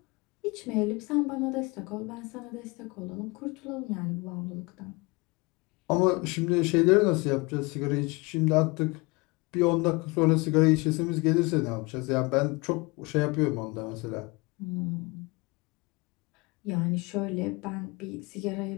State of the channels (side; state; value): right; quieter; 26.1 dB